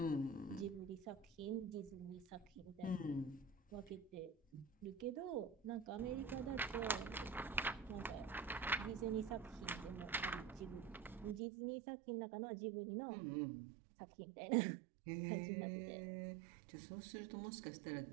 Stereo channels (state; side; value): drops out; left; at 11.4 s